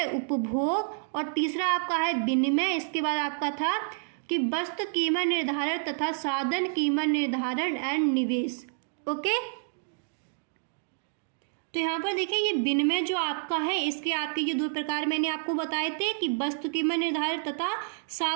उपभोग और तीसरा आपका है विनिमय। इसके बाद आपका था कि वस्तु कीमत निर्धारण तथा साधन कीमत निर्धारण एंड निवेश। ओके, तो यहाँ पर देखिए ये विनिमय जो आपका है इसके आपके ये दो प्रकार मैंने आपको बताए थे कि वस्तु कीमत निर्धारण तथा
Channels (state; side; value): silent; left; digital silence